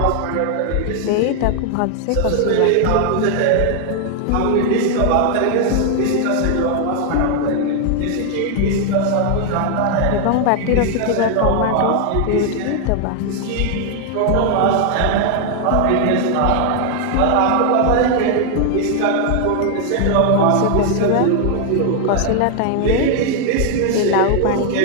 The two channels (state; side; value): different; both; correlation 0.00